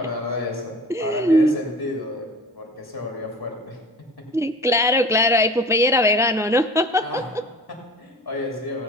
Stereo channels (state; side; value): normal; both; correlation 0.40